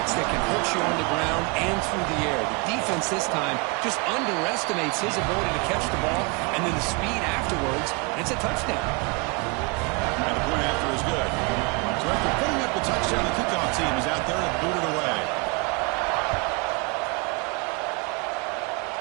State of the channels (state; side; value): quieter; left; 30.2 dB